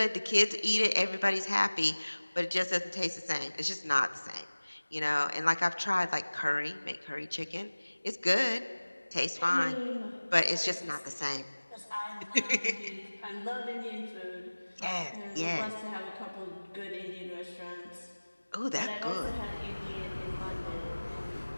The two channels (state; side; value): inverted; both; correlation -1.00